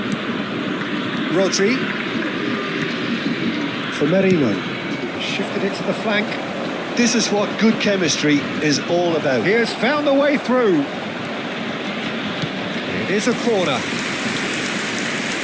Rodri. For Merino, shifted it to the flank. This is what good chemistry is all about. He has found the way through. It is a corner.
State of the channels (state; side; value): identical; both; correlation 1.00